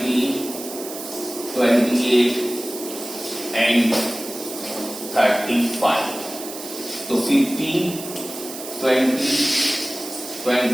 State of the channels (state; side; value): noise; right; hiss, 11 dB below the sound